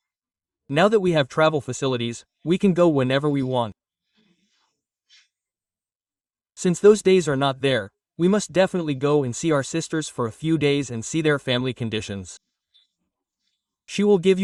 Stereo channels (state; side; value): identical; both; correlation 1.00